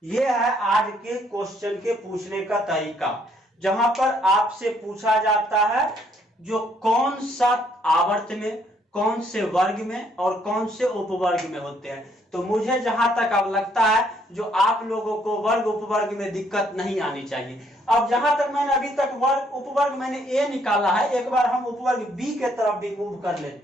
यह है आज के क्वेश्चन के पूछने का तरीका, जहां पर आपसे पूछा जाता है जो कौन सा आवर्त में, कौन से वर्ग में और कौन से उपवर्ग में होते हैं। तो मुझे जहां तक अब लगता है जो आप लोगों को वर्ग उपवर्ग में दिक्कत नहीं आनी चाहिए। अब जहां तक मैंने अभी तक वर्ग उपवर्ग मैंने A निकाला है, एक बार हम उपवर्ग B के तरफ भी मूव कर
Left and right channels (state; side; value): normal; both; correlation 0.68